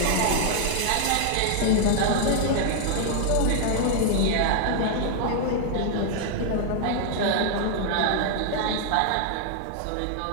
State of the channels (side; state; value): both; different; correlation 0.00